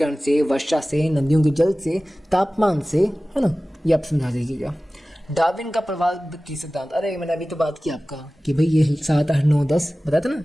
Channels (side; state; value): both; normal; correlation 0.97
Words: से, वर्षा से, नदियों के जल से, तापमान से, है ना, ये आप समझा दीजिएगा। डार्विन का प्रवाल भित्ति सिद्धांत, अरे मैंने अभी तो बात की आपका कि भाई ये 7, 8, 9, 10 बताया था ना,